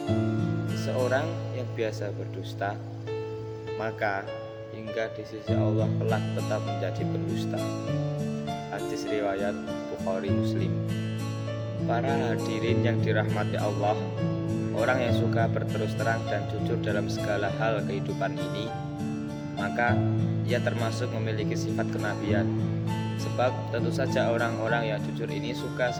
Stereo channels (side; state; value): both; identical; correlation 1.00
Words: Seseorang yang biasa berdusta, maka hingga di sisi Allah kelak tetap menjadi pendusta. Hadis riwayat Bukhari Muslim. Para hadirin yang dirahmati Allah, orang yang suka berterus terang dan jujur dalam segala hal kehidupan ini, maka ia termasuk memiliki sifat kenabian. Sebab tentu saja orang-orang yang jujur ini suka